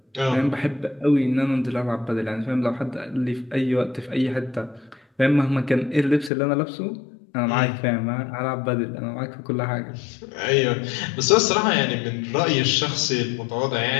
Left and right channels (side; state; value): right; drops out; at 6.3 s